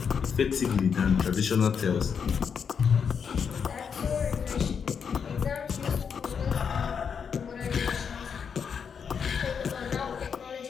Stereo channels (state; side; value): quieter; right; 6.7 dB